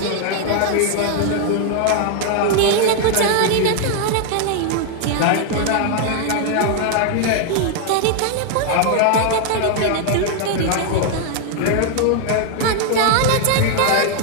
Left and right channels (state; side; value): different; both; correlation 0.00